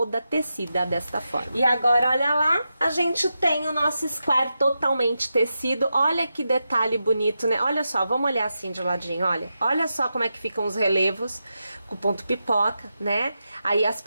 tecida desta forma. E agora, olha lá, a gente tem o nosso square totalmente tecido. Olha que detalhe bonito, né? Olha só, vamos olhar assim de ladinho, olha. Olha só como é que ficam os relevos com o ponto pipoca, né? Aí as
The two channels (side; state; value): both; inverted; correlation -0.89